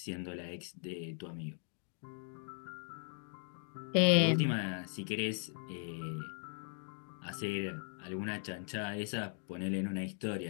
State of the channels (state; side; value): silent; right; 52 dB below the other